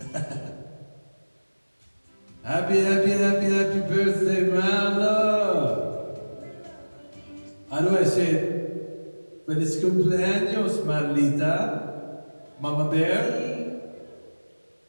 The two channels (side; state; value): both; inverted; correlation -1.00